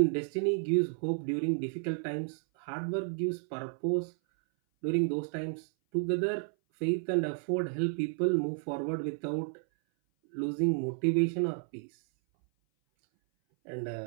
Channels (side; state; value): left; silent; 57 dB below the other